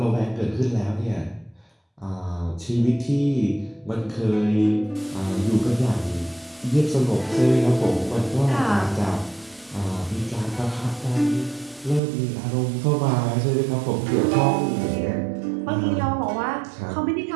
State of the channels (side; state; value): left; drops out; at 12.0 s